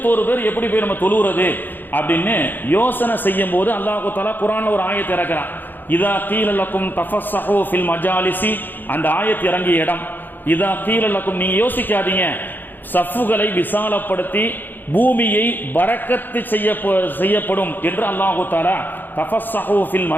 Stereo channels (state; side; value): late; right; 0.091 ms